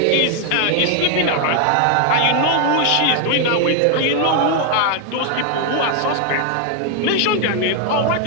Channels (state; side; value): different; both; correlation 0.00